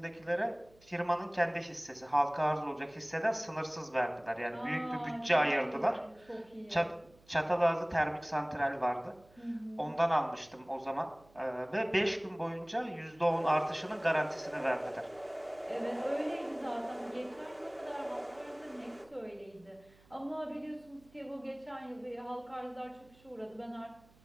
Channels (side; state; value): right; noise; hum, 28 dB below the sound